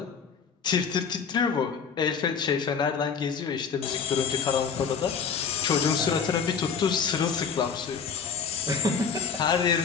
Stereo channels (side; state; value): right; quieter; 6.2 dB